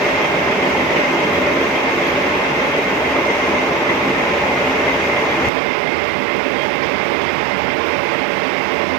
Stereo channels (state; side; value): drops out; left; at 5.5 s